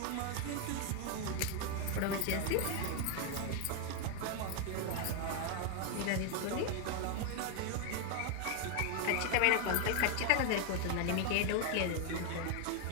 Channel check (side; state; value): both; different; correlation 0.01